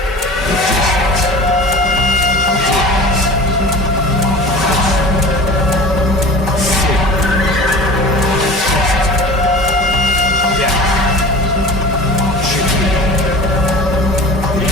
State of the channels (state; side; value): normal; both; correlation 0.37